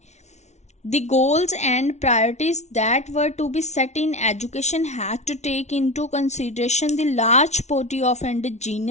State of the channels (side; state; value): right; late; 0.32 ms